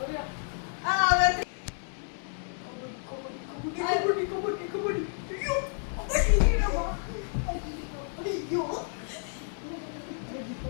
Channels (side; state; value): right; silent; 57 dB below the other